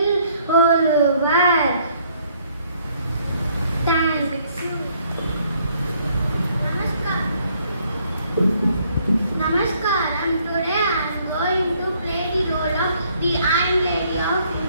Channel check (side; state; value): both; inverted; correlation -0.66